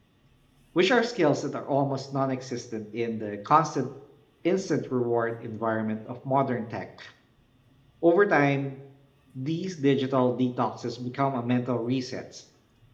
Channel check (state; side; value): identical; both; correlation 1.00